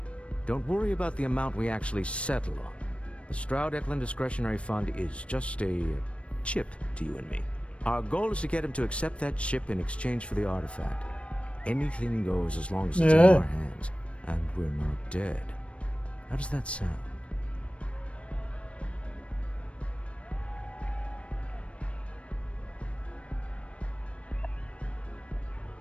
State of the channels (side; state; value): right; late; 0.061 ms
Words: Don't worry about the amount we actually settle on. The Stroud-Eklund Discretionary Fund is just a chip to you and me. Our goal is to get him to accept that chip in exchange for the artifact. Anything goes as long as it's in our hands, and we're not dead. How does that sound?